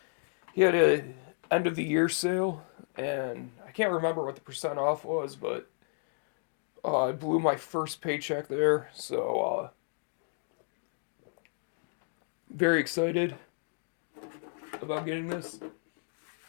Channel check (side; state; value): right; silent; 56 dB below the other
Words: He had a end of the year sale, and I can't remember what the percent off was, but I blew my first paycheck there, so very excited about getting this.